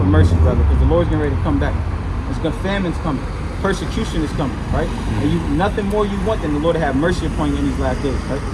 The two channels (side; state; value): both; identical; correlation 1.00